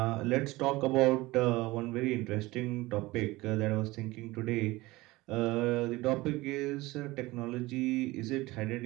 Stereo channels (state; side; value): quieter; left; 20.2 dB